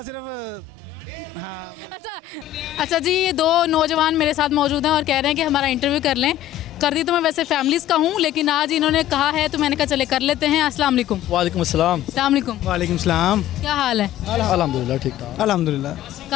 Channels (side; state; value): right; quieter; 12.8 dB